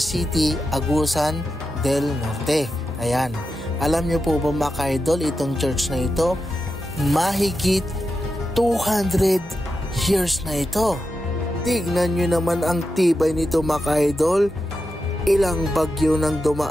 Agusan del Norte. Ayan. Alam nyo po ba mga ka-idol, itong church na ito, mahigit 200 years na ito. Tignan nyo naman ang tibay nito mga ka-idol. Ilang bagyo nang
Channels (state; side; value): normal; both; correlation 0.89